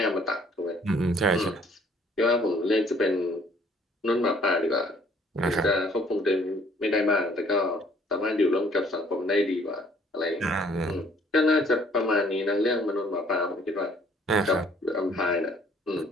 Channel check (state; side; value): normal; both; correlation 0.60